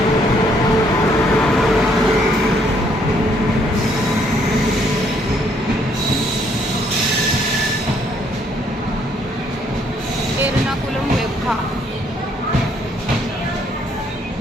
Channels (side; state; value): both; normal; correlation 0.68